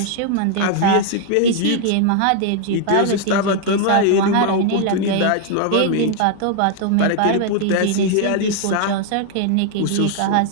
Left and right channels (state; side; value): different; both; correlation 0.00